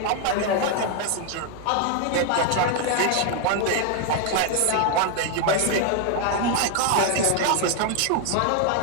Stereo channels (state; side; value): different; both; correlation 0.00